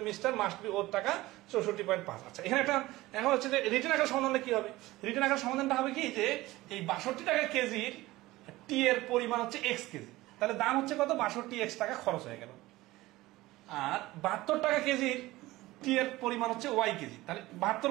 mixture must be worth টাকা 64.5। আচ্ছা, এখানে একটা এখন হচ্ছে যে রিটার্ন আকার সমাধানটা কি হবে? রিটার্ন আকার সমাধানটা হবে কি যে এই 62 টাকা কেজির টি এর পরিমাণ হচ্ছে এক্স কেজি, তাহলে দাম হচ্ছে কত 62x টাকা খরচ হয়ে গেল। আর 72 টাকা কেজির টি এর পরিমাণ হচ্ছে ওয়াই কেজি, তাহলে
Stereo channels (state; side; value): quieter; left; 18.4 dB